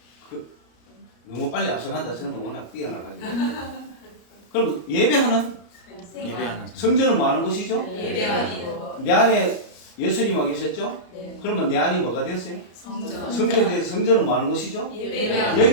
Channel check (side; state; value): right; late; 34 ms